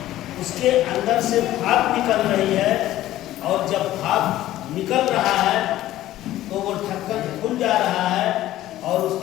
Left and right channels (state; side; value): quieter; right; 14.5 dB